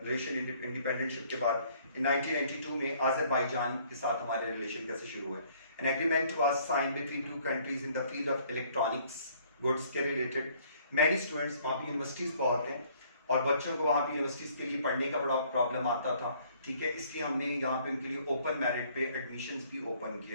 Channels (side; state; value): both; inverted; correlation -0.61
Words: इंडिपेंडेंटशिप के बाद in 1992 में Azerbaijan के साथ हमारे रिलेशन कैसे शुरू हुए. An agreement was signed between two countries in the field of electronics goods के related. Many students वहाँ पे यूनिवर्सिटीज़ बहुत हैं और बच्चों को वहाँ पे यूनिवर्सिटीज़ के लिए पढ़ने का बड़ा प्रॉब्लम आता था. ठीक है, इसलिए हमने यहाँ पे उनके लिए ओपन मेरिट पे एडमिशन्स भी ओपन